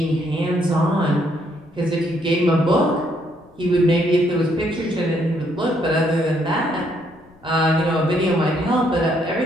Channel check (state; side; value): noise; left; rumble, 29 dB below the sound